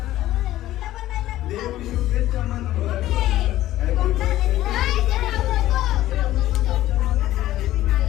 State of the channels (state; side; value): quieter; right; 14.6 dB